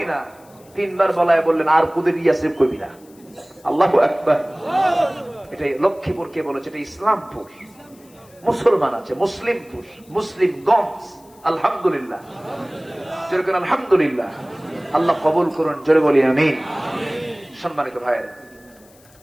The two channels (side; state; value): left; noise; hiss, 28 dB below the sound